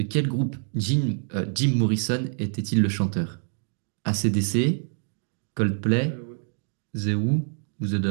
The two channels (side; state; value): left; silent; 61 dB below the other